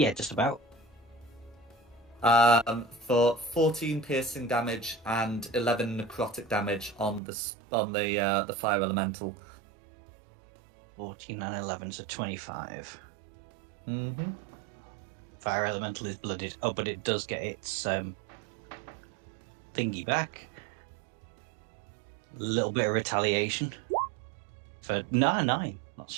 just about. For 14 piercing damage and 11 necrotic damage on the fire elemental. 14 and 11, so 25. Mm-hmm. Fire elemental is blooded. Oh, but it does get its thingy back. A little bit of retaliation. For 9, not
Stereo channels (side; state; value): left; drops out; at 7.2 s